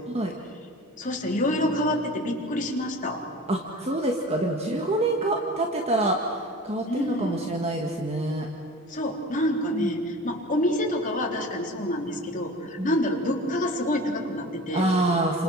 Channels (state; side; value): normal; both; correlation 0.38